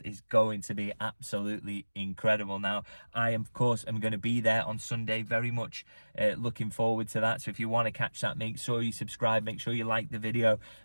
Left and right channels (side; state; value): both; inverted; correlation -1.00